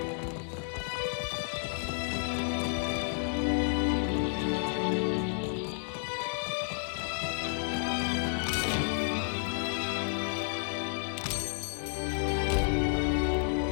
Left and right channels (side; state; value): right; silent; 57 dB below the other